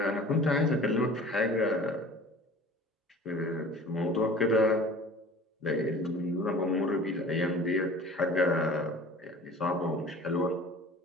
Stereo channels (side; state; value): both; normal; correlation 0.44